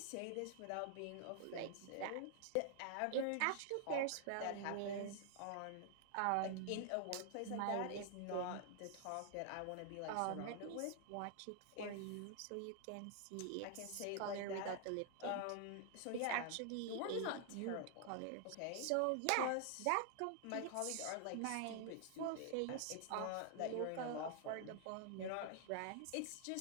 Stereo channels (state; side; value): different; both; correlation 0.00